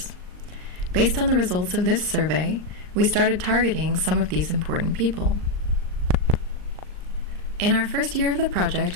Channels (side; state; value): left; late; 39 ms